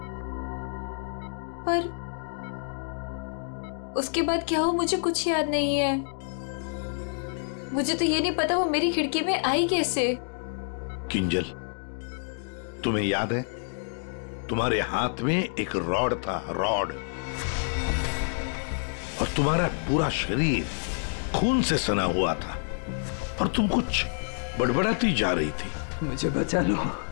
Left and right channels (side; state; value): right; silent; digital silence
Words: पर उसके बाद क्या हुआ मुझे कुछ याद नहीं है। मुझे तो ये नहीं पता वो मेरी खिड़की में आई कैसे। किंजल, तुम्हें याद है तुम्हारे हाथ में एक रॉड था, रॉड, और तुम्हारा पूरा शरीर खून से सना हुआ था और तुम कुछ बड़बड़ाती जा रही थी। मुझे बचा लो,